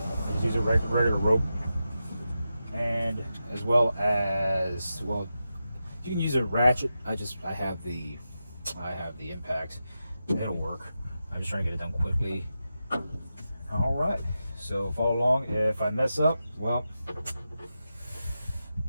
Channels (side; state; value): both; inverted; correlation -0.90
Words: Just use a regular rope, and as well, you can use a ratchet. I have the impact. It'll work. I'm just trying to get it done quickly. All right, so follow along. If I mess up, well,